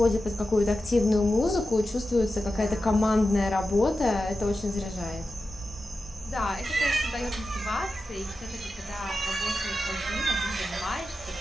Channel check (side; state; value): both; normal; correlation 0.92